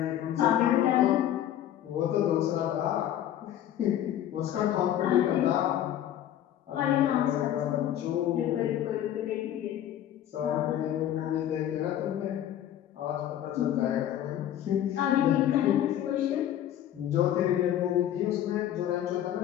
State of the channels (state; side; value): quieter; right; 11.5 dB